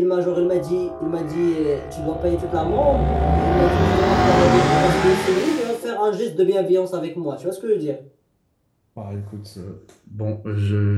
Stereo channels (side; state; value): both; identical; correlation 1.00